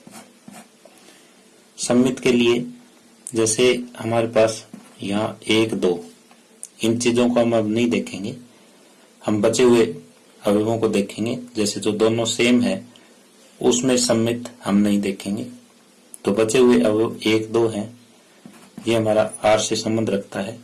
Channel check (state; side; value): identical; both; correlation 1.00